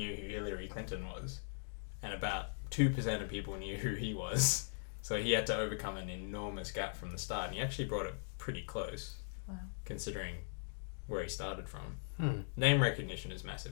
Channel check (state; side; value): silent; right; digital silence